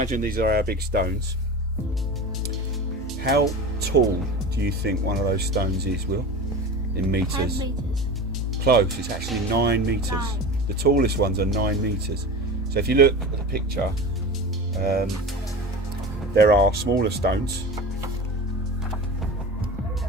these are our big stones. How tall do you think one of those stones is, Will? In meters? 10 meters. Close, it's actually 9 meters. 9. The tallest ones are 9 meters. So if you look at the picture, there are smaller stones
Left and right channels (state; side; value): normal; both; correlation 0.31